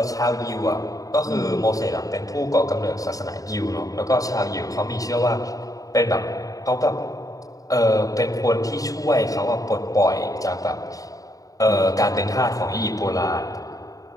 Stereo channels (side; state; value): right; late; 0.17 ms